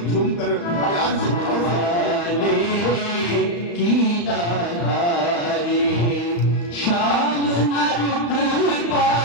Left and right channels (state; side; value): late; right; 35 ms